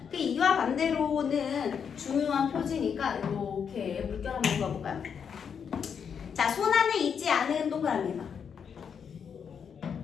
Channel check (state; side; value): quieter; right; 7.1 dB